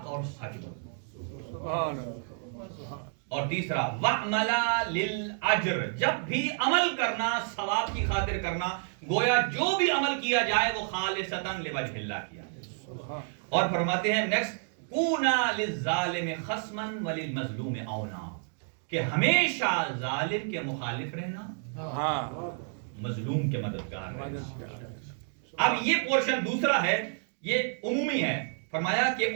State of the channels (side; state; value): left; silent; 58 dB below the other